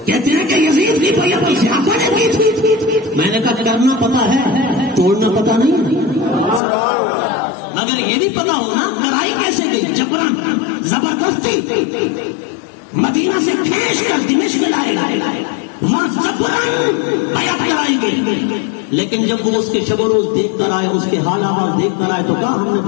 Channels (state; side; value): drops out; right; at 6.6 s